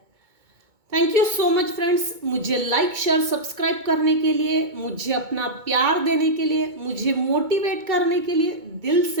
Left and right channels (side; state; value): left; late; 2.2 ms